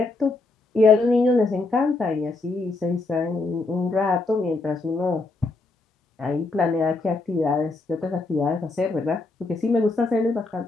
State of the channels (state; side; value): quieter; right; 3.4 dB